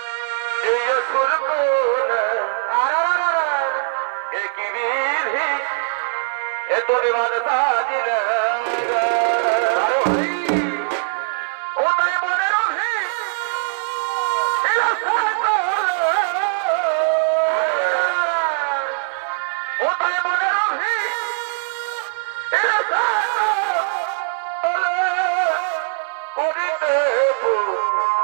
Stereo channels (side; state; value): left; silent; 55 dB below the other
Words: এই সুর কুলে একই বিধি এ তোরে বাদা সাজিল ও তাই মনে রবি